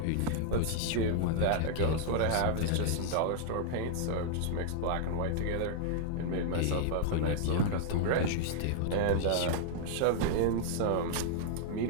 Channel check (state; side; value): different; both; correlation -0.01